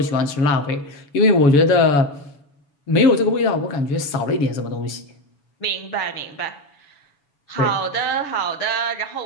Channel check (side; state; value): right; late; 7.0 ms